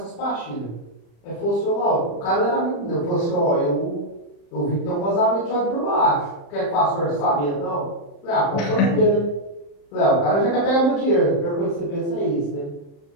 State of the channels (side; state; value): right; late; 35 ms